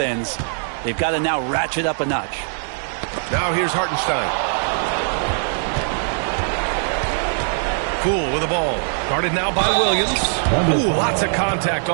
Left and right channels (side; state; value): left; silent; digital silence